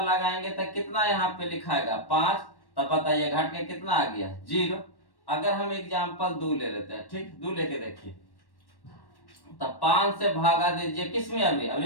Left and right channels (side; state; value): right; late; 1.1 ms